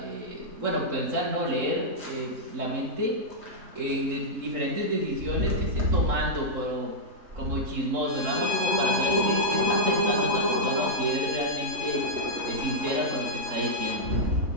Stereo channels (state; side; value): late; left; 3.7 ms